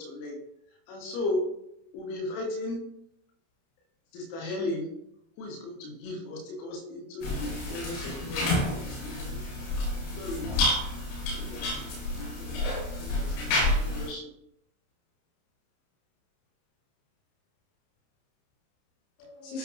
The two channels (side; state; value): right; late; 30 ms